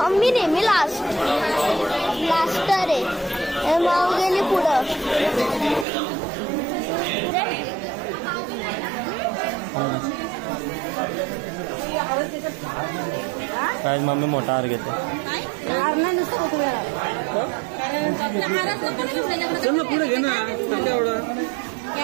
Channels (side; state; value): left; drops out; at 5.9 s